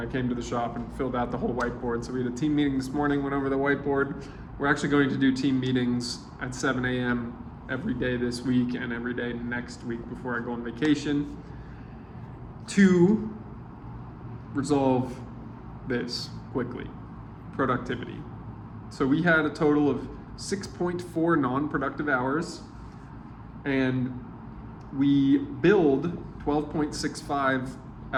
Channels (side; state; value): both; identical; correlation 1.00